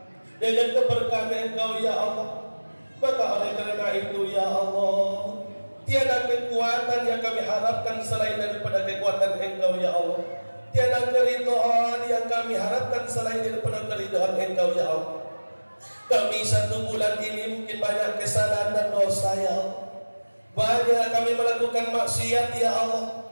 dengan keberkahan Engkau ya Allah. Maka oleh karena itu ya Allah, tiada kekuatan yang kami harapkan selain daripada kekuatan Engkau ya Allah. tiada keridhaan yang kami harapkan selain daripada keridhaan Engkau ya Allah. Kami 1 bulan ini mungkin banyak kesalahan dan dosa ya Allah. Banyak kami melakukan maksiat ya Allah,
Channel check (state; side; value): inverted; both; correlation -1.00